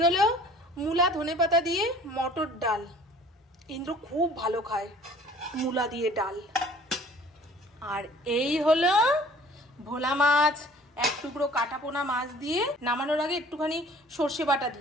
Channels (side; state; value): both; normal; correlation 0.51